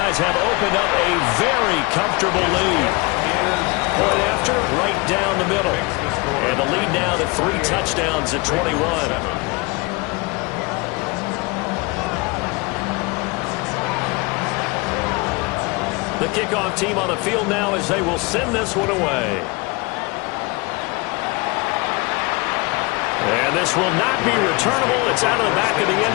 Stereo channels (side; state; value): right; quieter; 26.5 dB